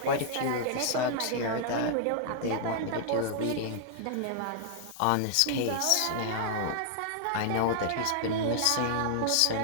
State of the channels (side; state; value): both; different; correlation -0.01